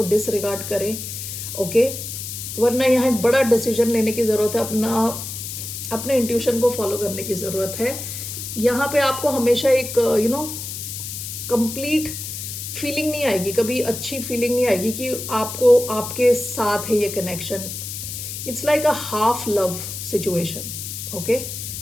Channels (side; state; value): left; noise; hiss, 7 dB below the sound